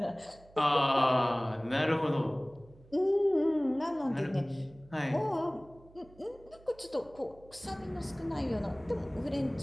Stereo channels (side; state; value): right; noise; hum, 25 dB below the sound